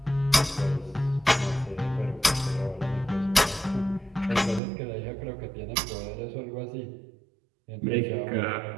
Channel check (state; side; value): drops out; left; at 4.6 s